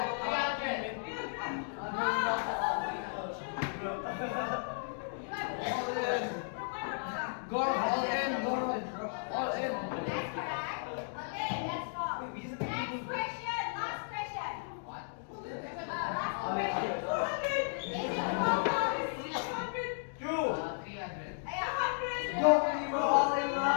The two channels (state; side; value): silent; right; digital silence